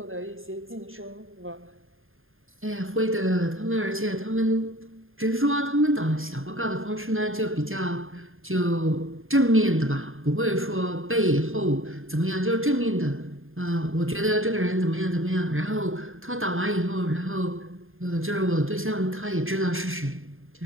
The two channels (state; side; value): late; left; 0.60 ms